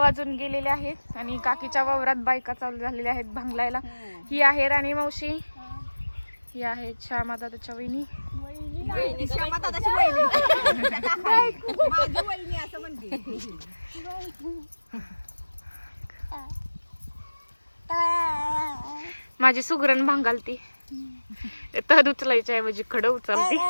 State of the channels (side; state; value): both; inverted; correlation -1.00